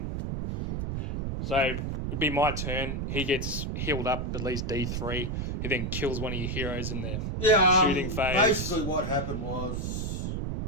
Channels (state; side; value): noise; right; rumble, 2 dB below the sound